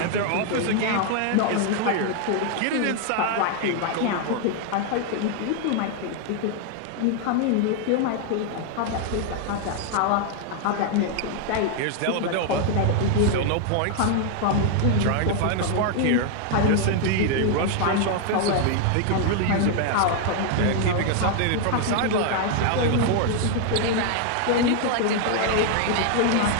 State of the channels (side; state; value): both; different; correlation 0.00